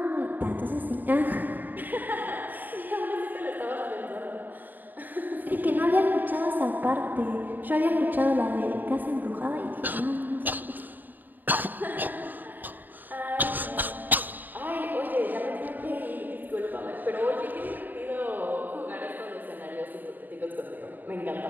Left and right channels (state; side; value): late; left; 0.089 ms